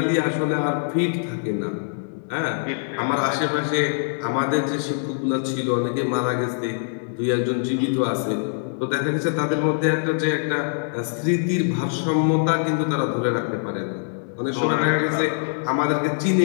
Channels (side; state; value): right; silent; digital silence